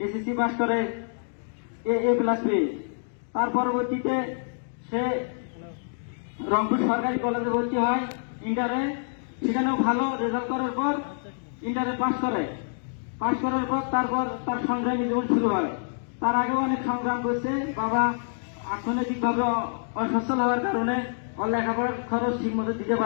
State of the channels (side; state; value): right; silent; digital silence